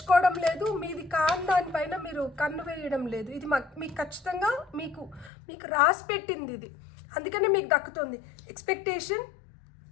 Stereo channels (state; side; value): drops out; right; at 5.3 s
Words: లేదు, మీది కాని దానిపైన మీరు కన్ను వేయడం లేదు. ఇది మీకు ఖచ్చితంగా మీకు రాసి పెట్టింది ఇది. అందుకనే మీకు దక్కుతుంది. Expectation,